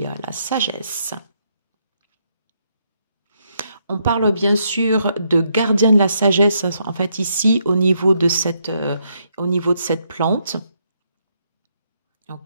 la sagesse. On parle bien sûr de gardien de la sagesse, en fait ici au niveau de cette plante.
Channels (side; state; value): both; inverted; correlation -0.76